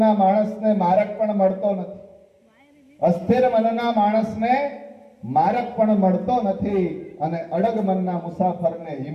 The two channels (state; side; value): identical; both; correlation 1.00